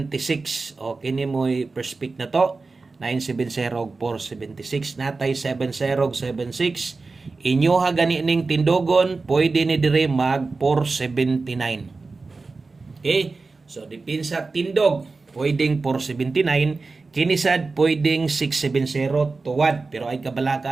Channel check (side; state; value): left; quieter; 3.9 dB